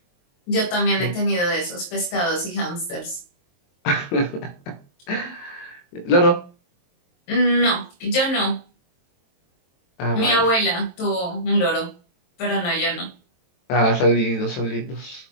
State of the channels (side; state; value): right; late; 23 ms